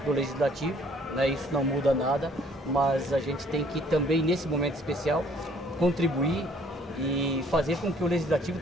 do legislativo, né? Isso não muda nada, mas a gente tem que também, nesse momento especial, contribuir e fazer com que o legislativo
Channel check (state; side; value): normal; both; correlation 0.60